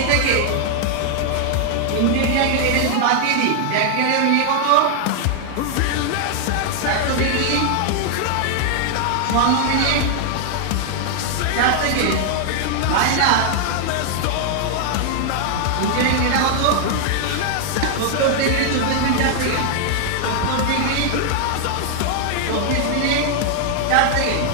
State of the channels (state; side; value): different; both; correlation 0.00